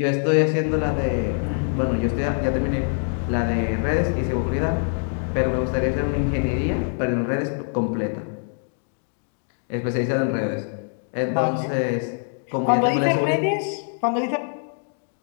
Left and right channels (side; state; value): right; silent; 63 dB below the other